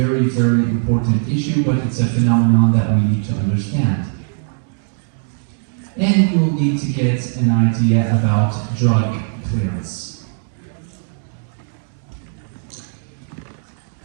very important issue, but it's a phenomenon that we need to understand. And we will need to get an idea about drug clearance.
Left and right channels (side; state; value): left; silent; digital silence